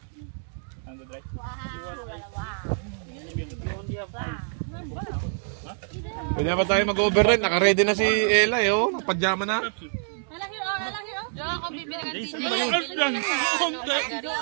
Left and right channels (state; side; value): silent; left; digital silence